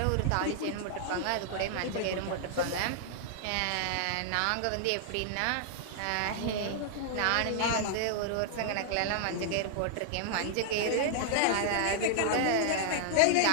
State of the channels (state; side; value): different; both; correlation -0.01